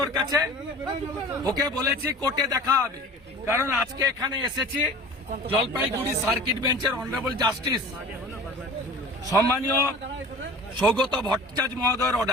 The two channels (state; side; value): normal; both; correlation 0.41